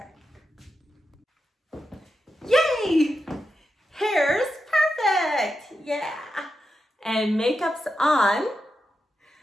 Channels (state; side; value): normal; both; correlation 0.88